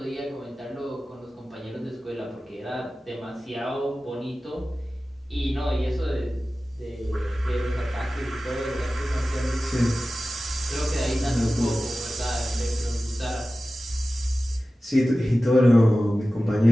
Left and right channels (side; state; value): both; normal; correlation 0.95